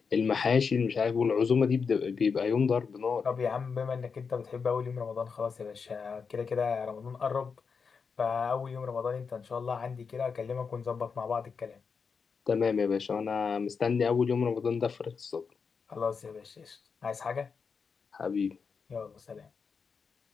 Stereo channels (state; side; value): quieter; right; 5.6 dB